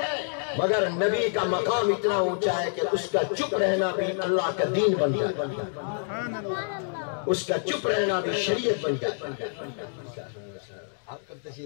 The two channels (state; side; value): silent; right; digital silence